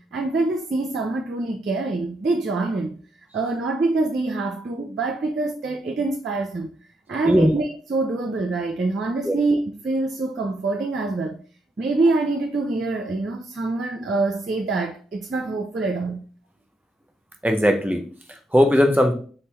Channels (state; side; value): normal; both; correlation 0.80